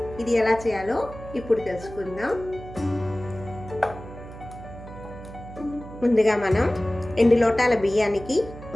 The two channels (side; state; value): right; noise; hum, 14 dB below the sound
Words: ఇది ఎలా చేయాలో ఇప్పుడు తెలుసుకుందాం. ముందుగా మనం 2 లోటాల బియ్యానికి